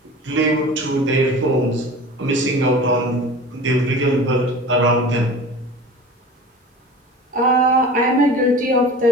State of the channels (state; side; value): normal; both; correlation 0.38